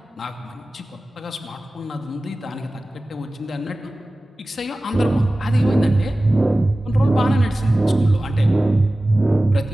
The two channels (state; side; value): normal; both; correlation 0.97